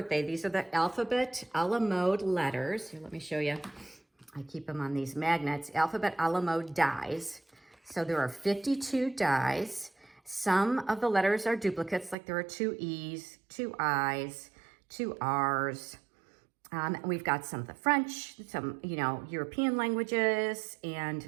These are the alphabet a la mode letters. Here, let me show you. I keep them on these magnets. Alphabet a la mode dies. So there are 52 dies. Some of the letters are duplicates, like there are 2 E's, 2 I's, 2 R's. We've got some of the French, some, European languages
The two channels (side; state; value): left; drops out; at 12.2 s